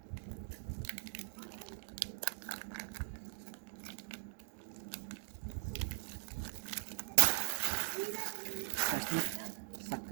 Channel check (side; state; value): left; silent; digital silence